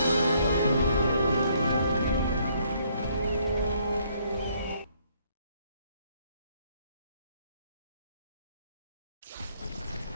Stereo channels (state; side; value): inverted; both; correlation -0.67